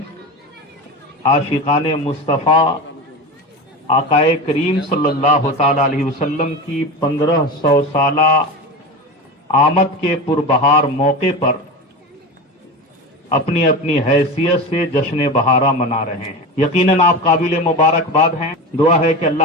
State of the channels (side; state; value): both; normal; correlation 0.26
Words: عاشقان مصطفیٰ آقائے کریم صلی اللہ تعالی علیہ وسلم کی 1500 سالہ آمد کے پربہار موقع پر اپنی اپنی حیثیت سے جشن بہارہ منا رہے ہیں۔ یقیناً آپ قابل مبارکباد ہیں۔ دعا ہے کہ